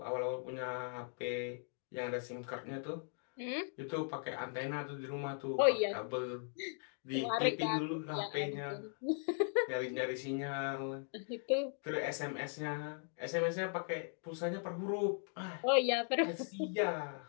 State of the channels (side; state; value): right; silent; 52 dB below the other